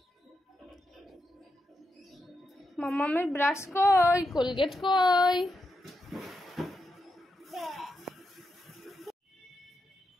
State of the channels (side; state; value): both; normal; correlation 0.85